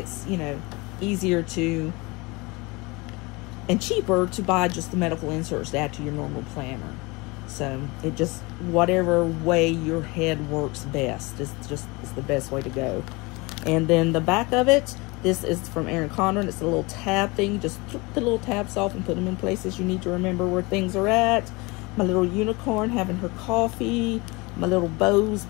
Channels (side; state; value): right; quieter; 25.4 dB